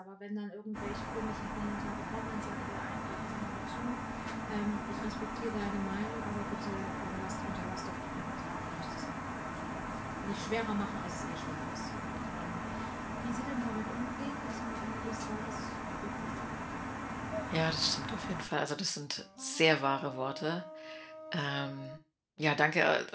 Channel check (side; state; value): both; identical; correlation 1.00